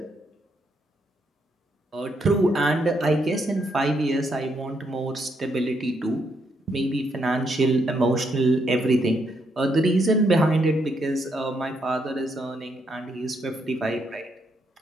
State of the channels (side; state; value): both; normal; correlation 0.76